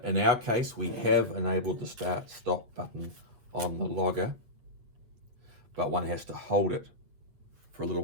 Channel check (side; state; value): left; late; 8.7 ms